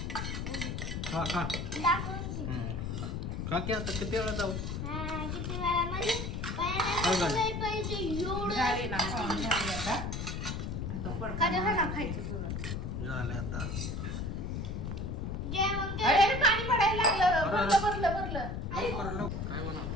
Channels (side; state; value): left; noise; rumble, 3 dB below the sound